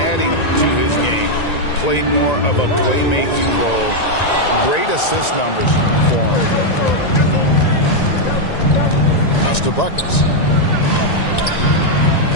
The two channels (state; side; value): late; right; 1.9 ms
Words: to his game. Played more of a playmaking role. Great assist numbers for him. Pass to Buckets.